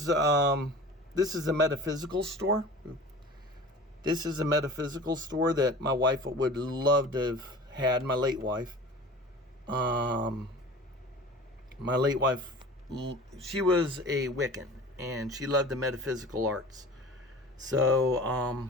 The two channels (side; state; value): both; normal; correlation 0.40